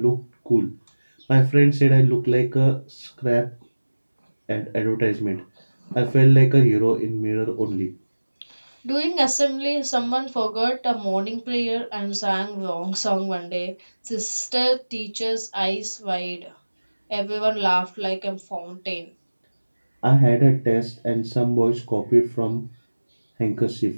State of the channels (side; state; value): both; inverted; correlation -1.00